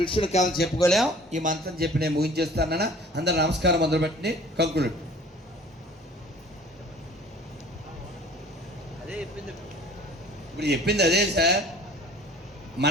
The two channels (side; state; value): both; normal; correlation 0.49